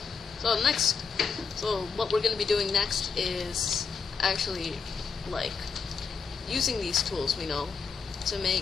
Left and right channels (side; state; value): right; quieter; 5.5 dB